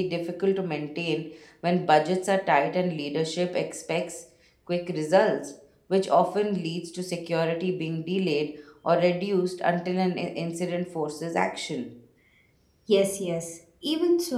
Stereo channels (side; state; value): both; identical; correlation 1.00